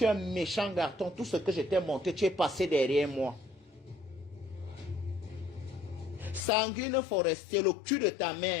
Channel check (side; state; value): right; drops out; at 6.5 s